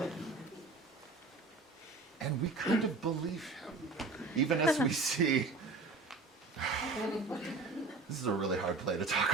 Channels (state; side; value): quieter; left; 3.8 dB